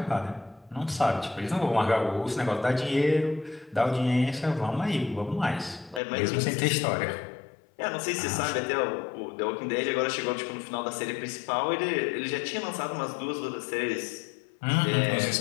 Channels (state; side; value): drops out; right; at 6.0 s